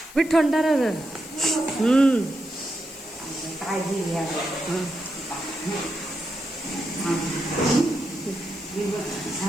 थंड काळजी घ्या.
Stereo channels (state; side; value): noise; left; hiss, 18 dB below the sound